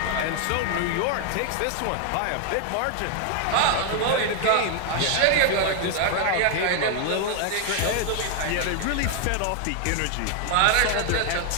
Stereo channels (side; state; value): both; different; correlation 0.00